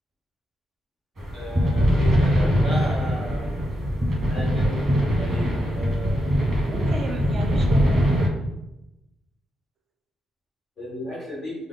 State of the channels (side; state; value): both; normal; correlation 0.85